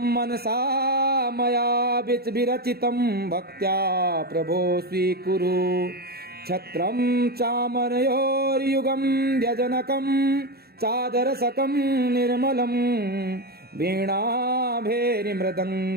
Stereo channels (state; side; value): late; left; 0.46 ms